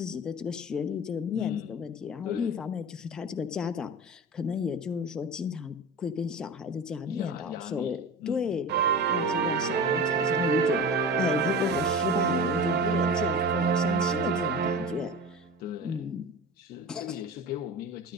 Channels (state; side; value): normal; both; correlation 0.32